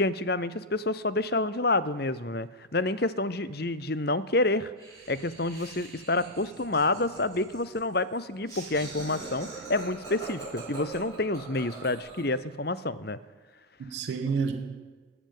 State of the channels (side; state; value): both; normal; correlation -0.03